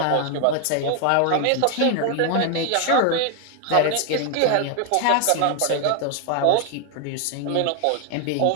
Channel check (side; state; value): both; different; correlation 0.00